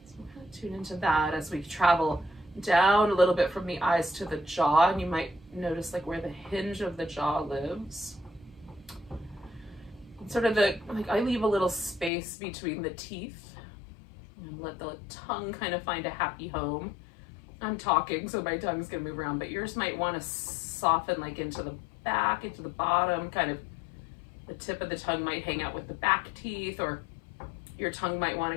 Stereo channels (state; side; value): drops out; right; at 12.1 s